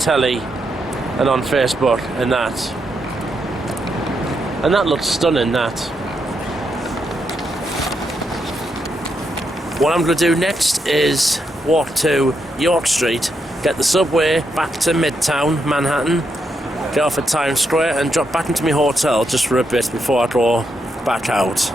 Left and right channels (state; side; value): normal; both; correlation 0.81